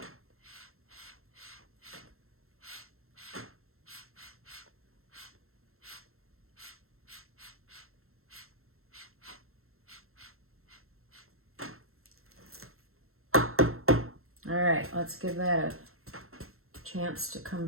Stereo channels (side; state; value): left; late; 0.62 ms